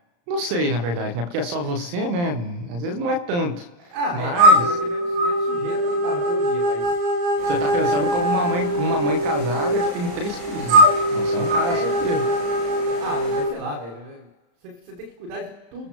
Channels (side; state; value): left; late; 34 ms